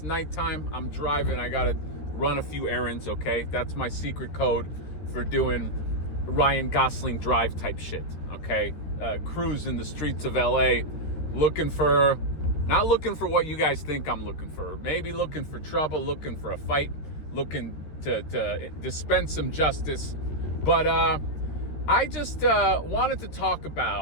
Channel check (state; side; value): late; right; 13 ms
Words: nighttime. I'm driving. I gotta run a few errands, okay? That's my secret code for doing Ryan Gosling drive type shit, okay? Cruise in the streets of LA, not looking for what you guys think I'm looking for. Maybe looking for trouble, looking for a fight, looking to dispense some justice. But I just wanted to talk